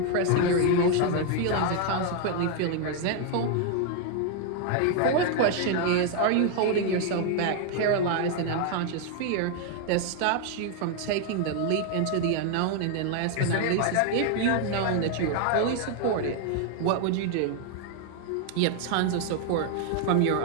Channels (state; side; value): different; both; correlation 0.00